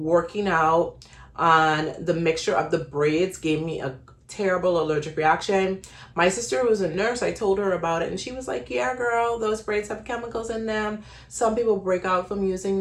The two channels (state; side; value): identical; both; correlation 1.00